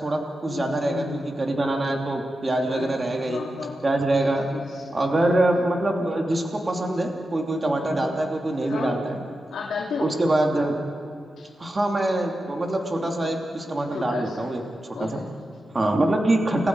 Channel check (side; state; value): both; normal; correlation 0.90